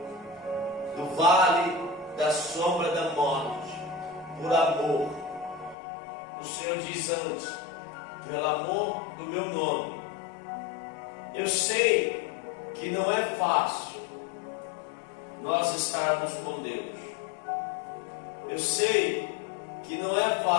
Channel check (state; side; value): drops out; right; at 5.8 s